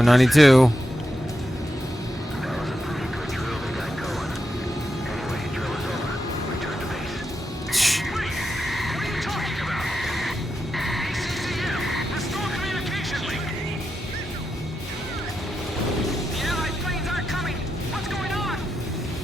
Shh. What are you talking about? CCM, restore communication link. The Allied planes aren't coming. What's going on?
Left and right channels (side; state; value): both; normal; correlation 0.87